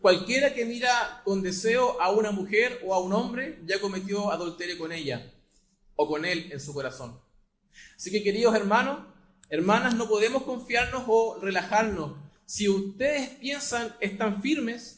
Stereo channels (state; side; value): identical; both; correlation 1.00